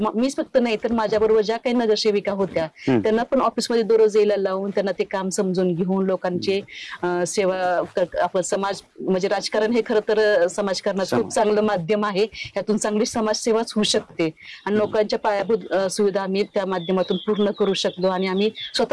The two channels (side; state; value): both; identical; correlation 1.00